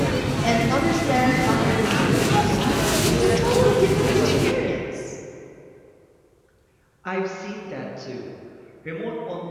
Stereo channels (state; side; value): identical; both; correlation 1.00